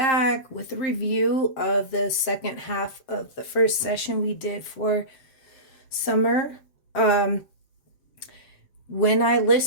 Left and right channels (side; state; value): right; late; 7.6 ms